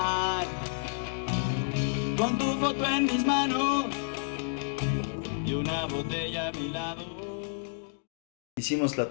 con tu foto en mis manos y una botella a mi lado. Hicimos la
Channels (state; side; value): silent; right; digital silence